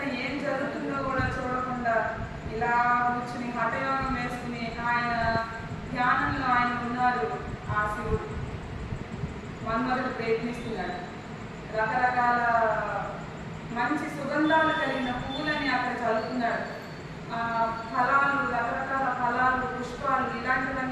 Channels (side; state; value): both; identical; correlation 1.00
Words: ఏం జరుగుతుందో కూడా చూడకుండా ఇలా కూర్చుని హఠయోగం వేసుకుని ఆయన ధ్యానంలో ఆయన ఉన్నారు. ఆ శివుడు మన్మథుడు ప్రయత్నిస్తున్నాడు. రకరకాల మంచి సుగంధాలు కలిగిన పువ్వులని అక్కడ చల్లుతున్నాడు. ఫలాలు, రకరకాల ఫలాలు, పుష్పాలు